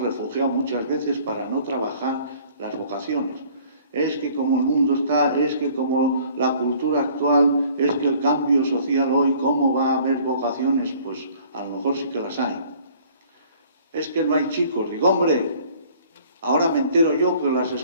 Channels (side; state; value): both; inverted; correlation -0.55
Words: refugiado muchas veces para no trabajar las vocaciones. Es que como el mundo está, es que como la cultura actual, es que el cambio social hoy, ¿cómo va a haber vocaciones? Pues a lo mejor sí que las hay. Es que no hay chicos. Digo, hombre, ahora me entero yo que las